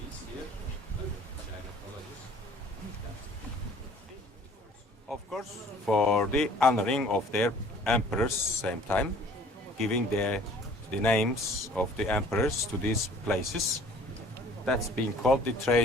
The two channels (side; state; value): both; normal; correlation 0.52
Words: here, like China. course, for the honoring of their emperors same time, giving the names of the emperors to these places. That's being called the